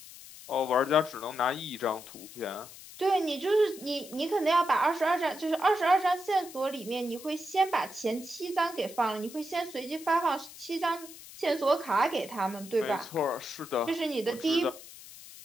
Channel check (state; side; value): noise; left; hiss, 17 dB below the sound